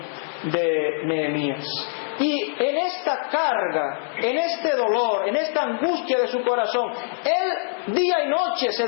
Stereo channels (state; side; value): silent; right; digital silence